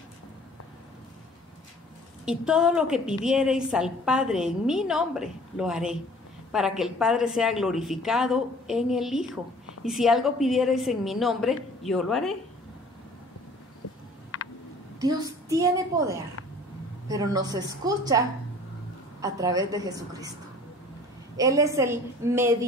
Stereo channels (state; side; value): normal; both; correlation 0.50